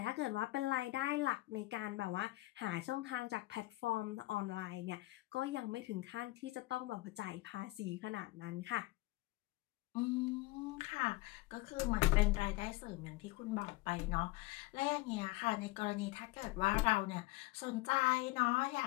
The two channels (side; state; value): right; quieter; 20.6 dB